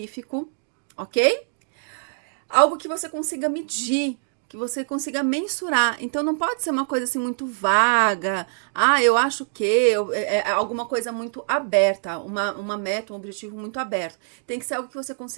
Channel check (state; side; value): silent; left; digital silence